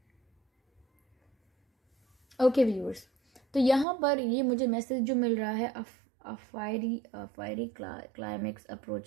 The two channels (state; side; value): drops out; left; at 3.9 s